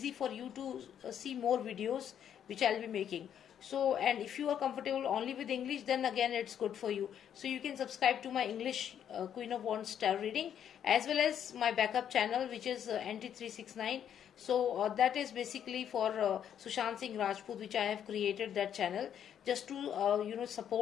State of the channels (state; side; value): quieter; right; 9.3 dB